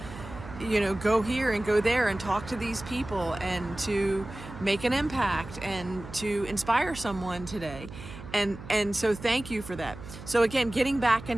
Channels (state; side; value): noise; right; hum, 13 dB below the sound